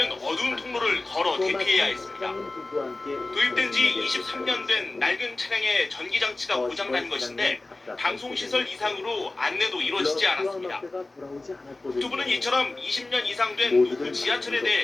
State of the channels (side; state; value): right; quieter; 3.0 dB